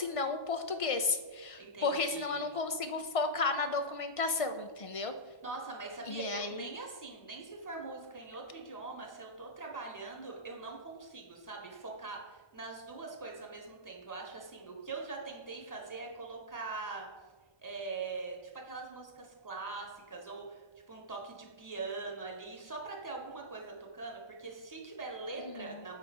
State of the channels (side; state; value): right; late; 1.5 ms